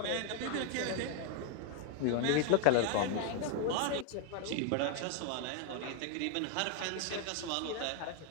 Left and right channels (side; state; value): both; different; correlation 0.00